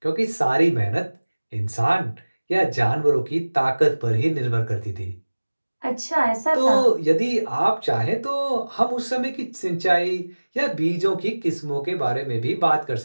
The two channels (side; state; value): both; inverted; correlation -1.00